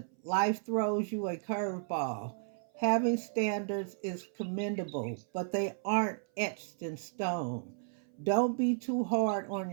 life throws you a curveball. Having standards is commendable, but they aren't etched in stone. Don't be too hard on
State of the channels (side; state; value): left; silent; 55 dB below the other